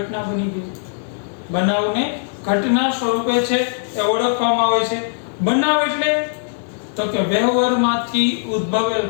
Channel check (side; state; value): right; silent; digital silence